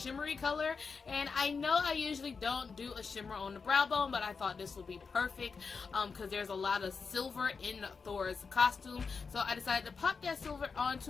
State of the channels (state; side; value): quieter; right; 5.1 dB